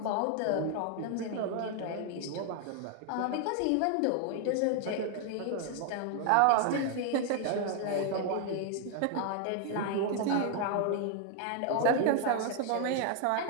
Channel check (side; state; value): both; different; correlation 0.00